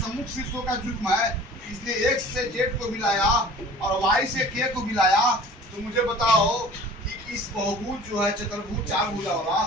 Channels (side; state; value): both; normal; correlation 0.46